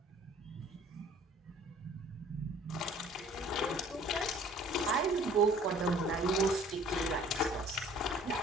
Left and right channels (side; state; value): both; normal; correlation 0.52